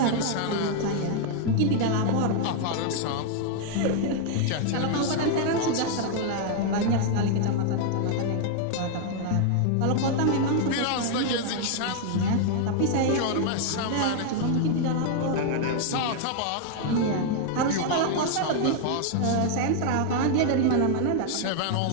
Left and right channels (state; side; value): different; both; correlation 0.00